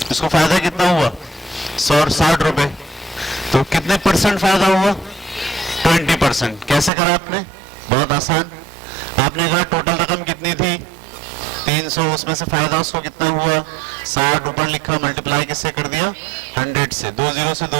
इसको फायदा कितना हुआ? 160 रुपए। तो कितने परसेंट फायदा हुआ? 20%। कैसे करा आपने? बहुत आसान। आपने कहा टोटल रकम कितनी थी? 300, उसमें से फायदा उसको कितना हुआ? 60। ऊपर लिखा, मल्टीप्लाई किससे कर दिया? 100 से। 2 जीरो से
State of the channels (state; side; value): drops out; left; at 6.9 s